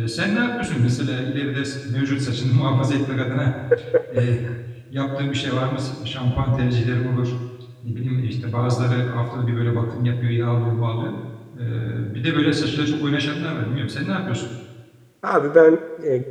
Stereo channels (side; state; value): both; identical; correlation 1.00